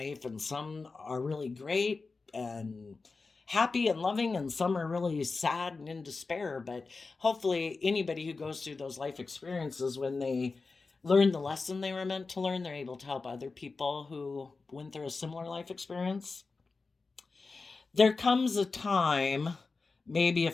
and some are really great and happy and loving, and some are really sad and in despair. But hopefully anybody who goes through those life experiences, when they learn the lesson they were meant to learn, they're able to help other people who went through a similar life experience. There comes a time, maybe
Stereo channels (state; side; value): quieter; right; 4.1 dB